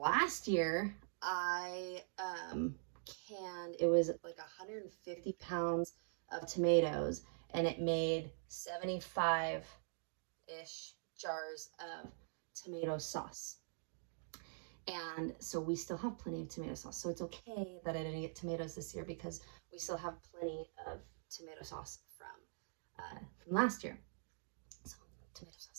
year I canned, it was like 150 pounds of tomatoes, and it made 75-ish jars of tomato sauce. And so we still have plenty of tomato sauce. So it's okay that I didn't get tomatoes this year because we still have plenty of tomato sauce from last year. So tomato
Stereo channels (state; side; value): silent; left; digital silence